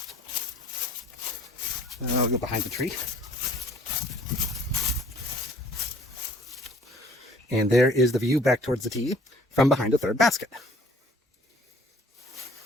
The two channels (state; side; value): normal; both; correlation 0.55